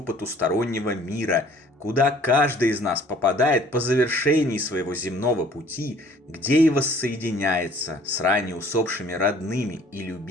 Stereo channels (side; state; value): both; normal; correlation 0.55